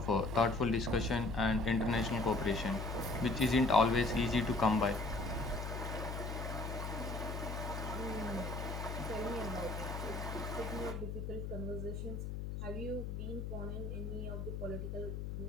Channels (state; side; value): noise; left; hum, 5 dB below the sound